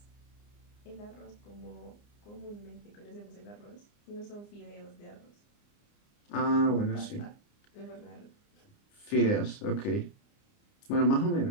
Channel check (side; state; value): right; late; 29 ms